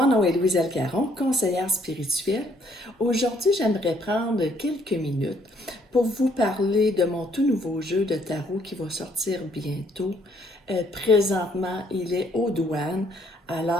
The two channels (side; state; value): both; normal; correlation 0.67